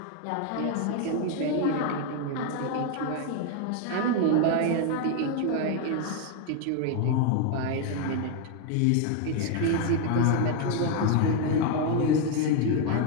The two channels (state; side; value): different; both; correlation 0.01